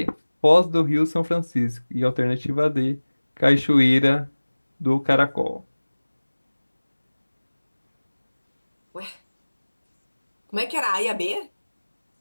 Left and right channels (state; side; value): inverted; both; correlation -1.00